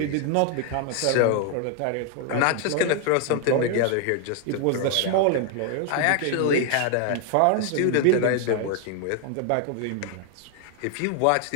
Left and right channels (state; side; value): different; both; correlation 0.00